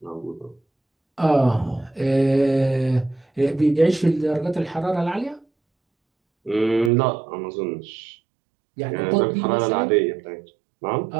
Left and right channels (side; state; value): left; drops out; at 6.9 s